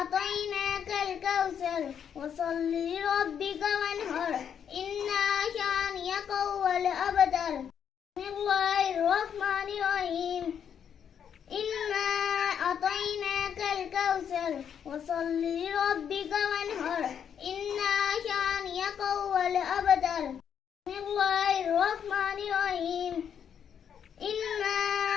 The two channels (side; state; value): right; quieter; 8.2 dB